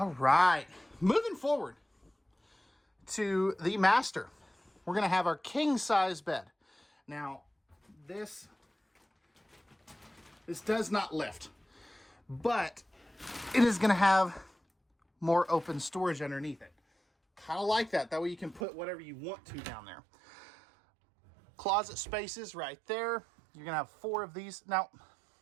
right, moving forward to the master. We're going to have our king size bed. Now, this does not lift, but it is going to have more open storage underneath it. Kind of like that. That way you can put whatever you want to down there. Closet spaces right there. You're going to have 4 of these. Now,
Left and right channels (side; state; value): left; drops out; at 18.6 s